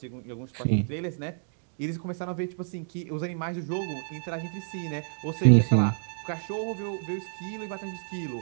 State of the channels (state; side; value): silent; left; digital silence